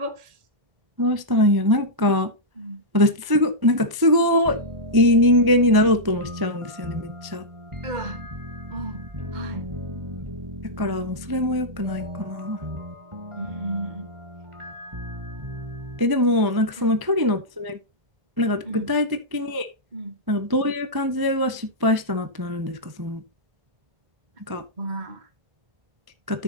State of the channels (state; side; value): late; left; 1.1 ms